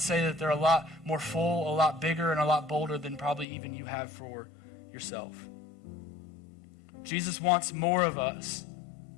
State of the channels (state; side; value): drops out; right; at 3.5 s